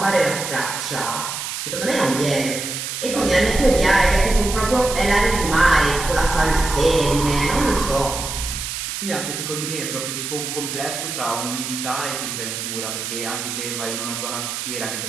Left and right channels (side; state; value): right; noise; hiss, 5 dB below the sound